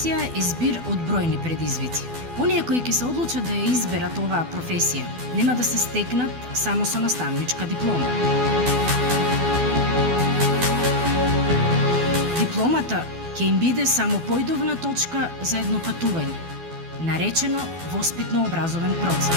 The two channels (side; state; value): left; late; 12 ms